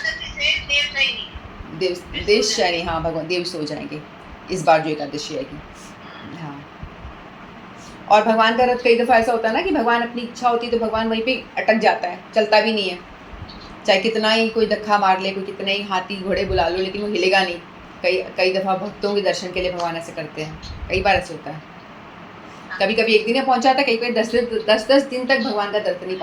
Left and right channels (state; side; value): identical; both; correlation 1.00